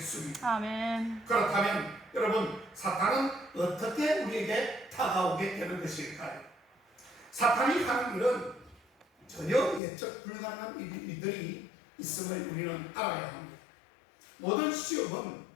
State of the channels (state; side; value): drops out; right; at 9.8 s